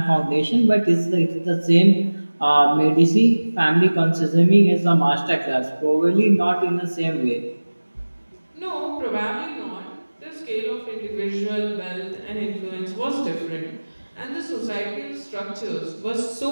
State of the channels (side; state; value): both; inverted; correlation -1.00